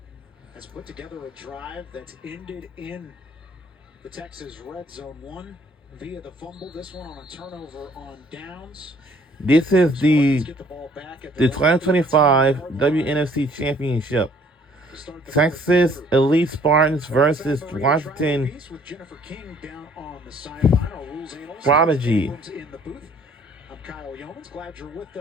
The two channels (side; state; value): both; normal; correlation 0.59